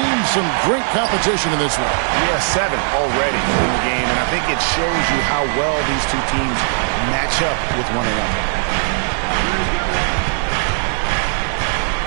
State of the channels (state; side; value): silent; left; 67 dB below the other